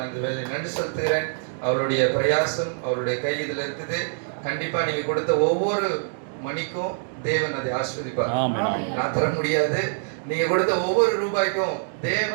நன்றி செலுத்துகிறேன். அவருடைய பிரயாசம் அவருடைய கை இதில் இருக்குது. கண்டிப்பா நீங்க கொடுத்த ஒவ்வொரு மணிக்கும் தேவன் அதை ஆஸ்வதிப்பார். நான் தர முடியாது. நீங்க கொடுத்த ஒவ்வொரு ரூபாய்க்கும்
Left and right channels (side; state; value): left; silent; digital silence